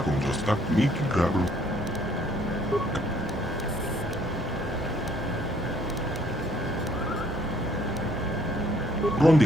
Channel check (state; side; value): normal; both; correlation 0.63